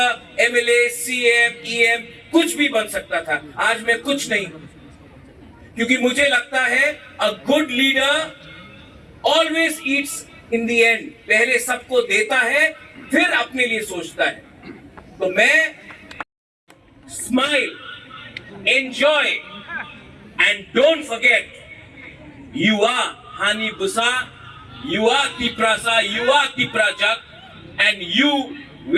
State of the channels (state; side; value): identical; both; correlation 1.00